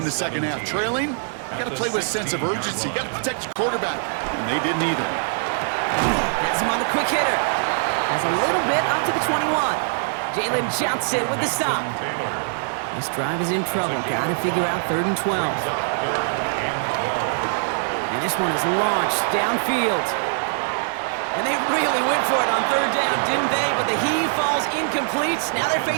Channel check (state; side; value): silent; left; 64 dB below the other